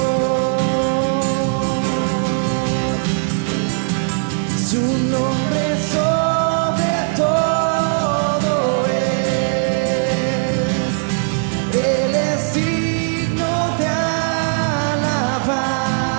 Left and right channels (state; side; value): silent; left; digital silence